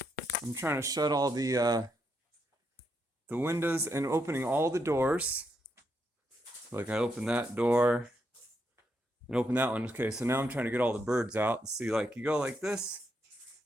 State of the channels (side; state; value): both; normal; correlation 0.80